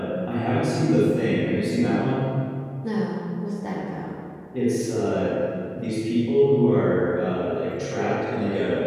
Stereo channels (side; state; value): both; identical; correlation 1.00